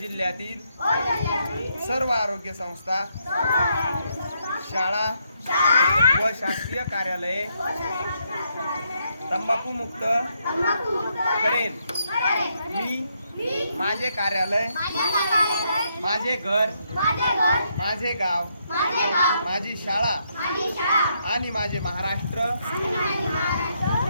जिल्ह्यातील सर्व आरोग्य संस्था, शाळा व शासकीय कार्यालये तंबाखू मुक्त करेन. मी माझे कार्यालय, माझे घर, माझे गाव, माझी शाळा आणि माझे महाराष्ट्र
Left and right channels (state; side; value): inverted; both; correlation -0.76